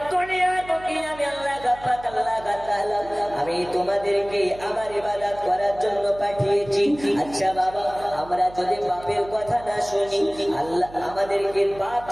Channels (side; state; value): right; noise; hum, 18 dB below the sound